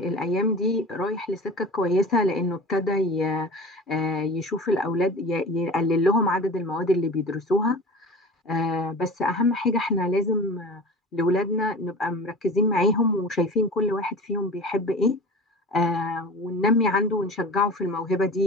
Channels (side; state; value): both; normal; correlation 0.35